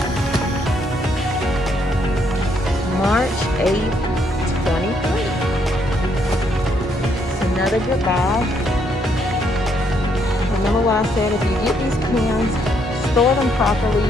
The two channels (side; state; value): both; normal; correlation 0.72